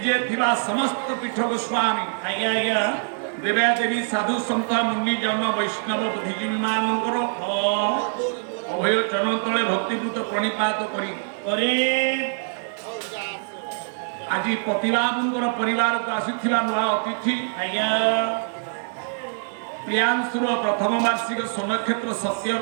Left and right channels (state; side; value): silent; left; 63 dB below the other